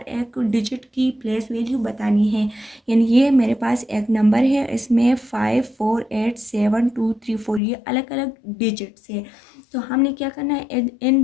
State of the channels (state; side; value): drops out; right; at 7.6 s